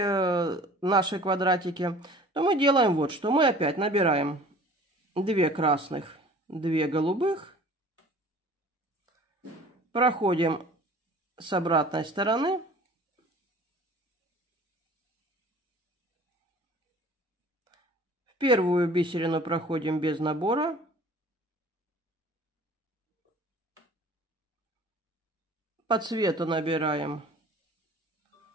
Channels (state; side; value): normal; both; correlation 0.47